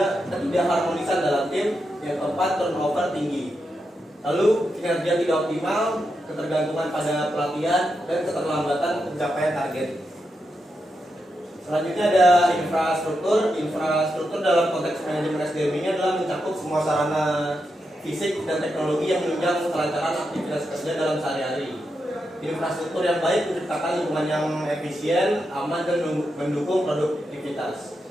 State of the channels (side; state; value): both; normal; correlation 0.86